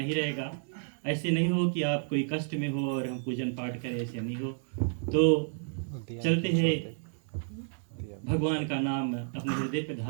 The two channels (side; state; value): left; silent; 57 dB below the other